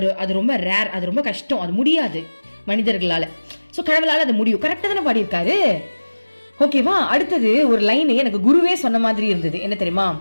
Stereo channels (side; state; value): both; inverted; correlation -1.00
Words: அது ரொம்ப ரேர், அது ரொம்ப கஷ்டம், அது முடியாது மனிதர்களால. சோ கடவுளால அது முடியும். கரெக்டா தானே பாடியிருக்காரு. ஓகேவா? அடுத்தது ஒரு லைன் எனக்கு குருவே சொன்ன மாதிரி இருந்தது. என்ன தெரியுமா?